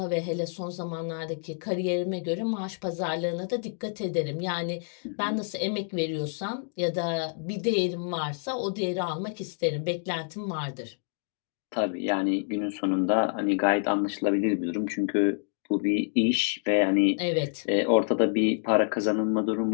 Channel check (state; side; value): silent; right; 59 dB below the other